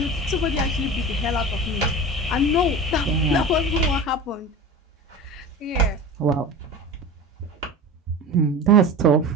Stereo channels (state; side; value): normal; both; correlation 0.31